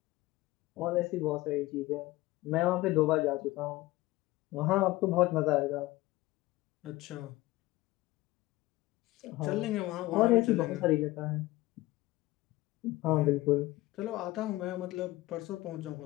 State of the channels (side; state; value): right; quieter; 18.6 dB